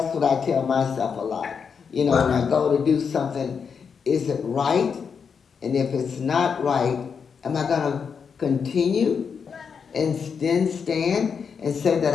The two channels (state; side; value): quieter; right; 6.3 dB